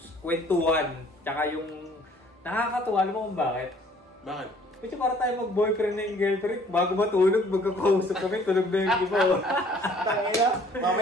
kwentuhan. Tsaka yung nakakatuwa. Alam mo kung bakit? Bakit? Kasi para tayo mag-boyfriend na yung girlfriend, bago matulog, magkakausap kami, tulog na yung iba. Tangina,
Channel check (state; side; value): normal; both; correlation 0.57